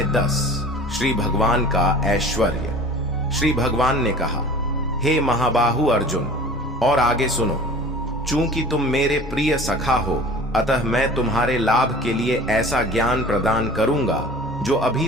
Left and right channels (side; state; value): both; normal; correlation 0.42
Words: 10। श्री भगवान का ऐश्वर्य। श्री भगवान ने कहा, हे महाबाहु अर्जुन, और आगे सुनो। चूंकि तुम मेरे प्रिय सखा हो, अतः मैं तुम्हारे लाभ के लिए ऐसा ज्ञान प्रदान करूंगा जो अभी